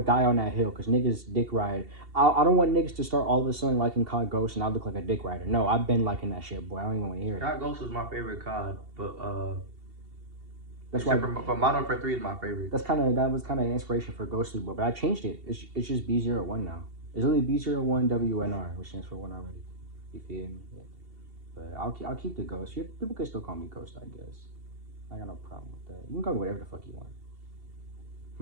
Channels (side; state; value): left; late; 2.7 ms